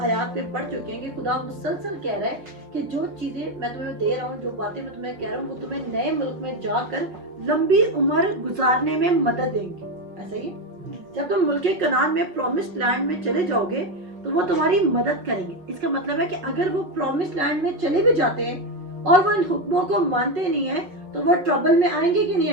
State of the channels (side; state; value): left; late; 5.9 ms